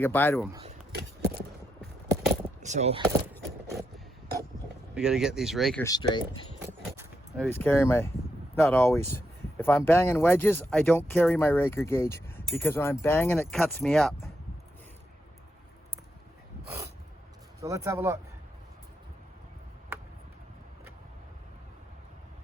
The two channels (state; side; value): normal; both; correlation 0.82